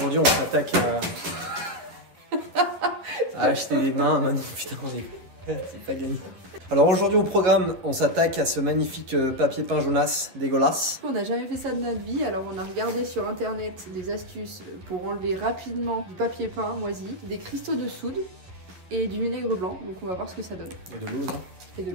on s'attaque à acheter des mains. Maintenant, putain, c'est pas gagné. Alors aujourd'hui au programme, on s'attaque à ce magnifique papier peint jaunasse dégueulasse. On n'a jamais fait ça de notre vie, alors on a regardé sur internet des astuces pour enlever rapidement du papier peint moisi, des cristaux de soude et du vinaigre blanc. Donc on va voir ce que ça donne. Et de l'eau, non? Et de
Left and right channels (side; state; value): left; late; 11 ms